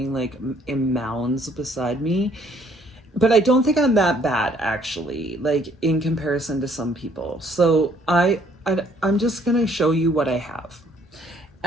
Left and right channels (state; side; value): normal; both; correlation 0.63